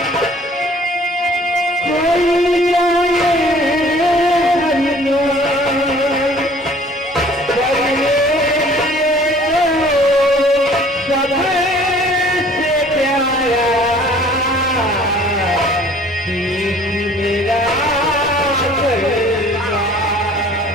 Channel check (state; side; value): normal; both; correlation 0.53